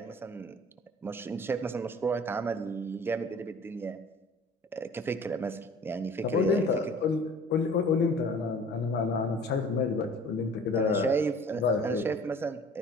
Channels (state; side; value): normal; both; correlation 0.47